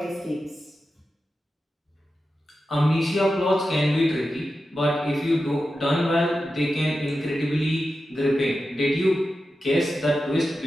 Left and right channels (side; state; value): both; normal; correlation 0.91